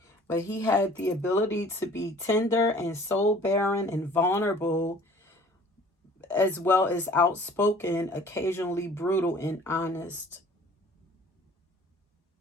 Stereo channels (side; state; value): both; normal; correlation 0.51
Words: But he had the ability to be tender and soul barren and vulnerable, as well as outspoken, occasionally brutal and honest.